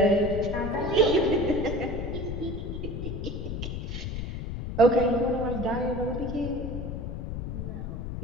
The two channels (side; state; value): left; noise; rumble, 5 dB below the sound